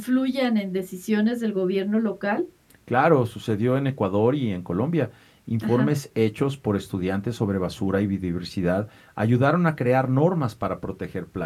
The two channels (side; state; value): both; identical; correlation 1.00